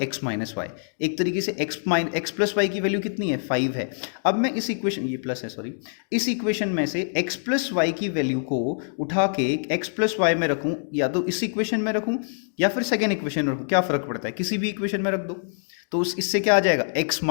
x माइनस वाई। एक तरीके से x प्लस वाई की वैल्यू कितनी है, 5 है। अब मैं इस इक्वेशन, ये प्लस है सॉरी, इस इक्वेशन में से x प्लस वाई की वैल्यू को उठा के x प्लस वाई में रखूं, या तो इस इक्वेशन में रखूं या फिर सेकेंड इक्वेशन में रखूं, क्या फर्क पड़ता है, किसी भी इक्वेशन में रख दो, तो इससे क्या आ जाएगा, x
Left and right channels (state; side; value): silent; right; digital silence